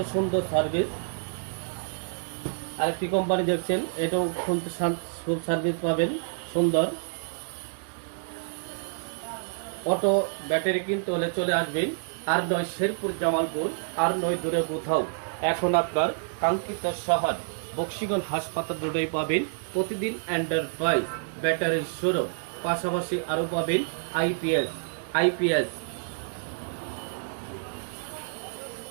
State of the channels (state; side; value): silent; left; digital silence